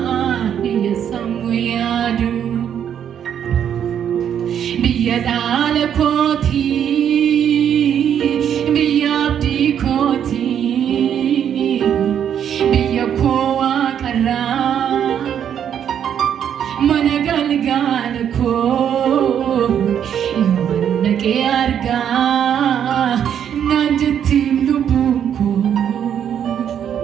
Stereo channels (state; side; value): quieter; left; 9.0 dB